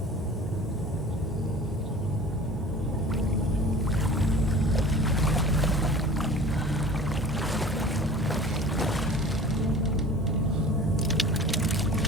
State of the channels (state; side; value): normal; both; correlation 0.42